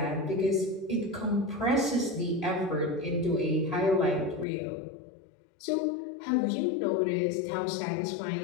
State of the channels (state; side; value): drops out; right; at 4.5 s